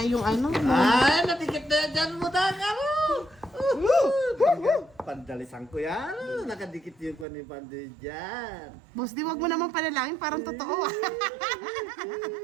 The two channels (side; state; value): left; drops out; at 7.2 s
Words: yung ano. Ay, natikit na dyan mo daga mo! Pandalisan ko yan. Nakadikit yung kwan ni Pandoy dyan. Boss D, wag mo naman panalangin. Parang totoo ah.